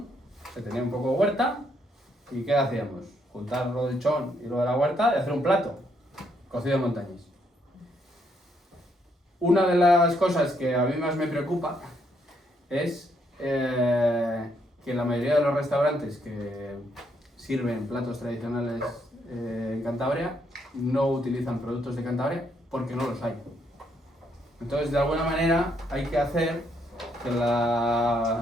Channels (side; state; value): both; normal; correlation 0.74